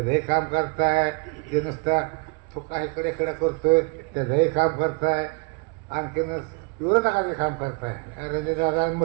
काम करताय, जे नुसतं तो काय इकडे इकडे करतोय त्याचंही काम करताय, आणखीन विरोधकाचे काम करताय. रणजित दादा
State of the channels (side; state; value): left; quieter; 32.1 dB